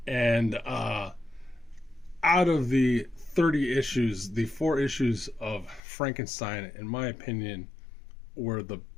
And out of the 30 issues, the 4 issues of Frankenstein, in my opinion, were the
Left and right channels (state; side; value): drops out; right; at 5.8 s